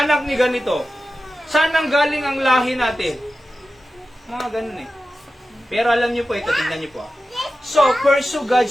ni ganito? Saan ang galing ang lahi natin? Mga ganun eh. Pero alam niyo po ito, tingnan niyo po. So, pursue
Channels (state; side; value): normal; both; correlation 0.93